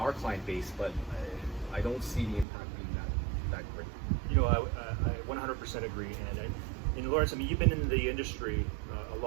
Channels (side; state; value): left; drops out; at 2.5 s